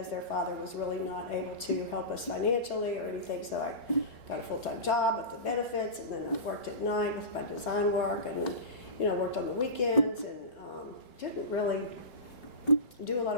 their father was really not able to help us financially or anything. So I got a full-time job with the benefits, and then I worked at night with my design work, and then worked on the weekends, and didn't really do a lot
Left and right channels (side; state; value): right; late; 3.2 ms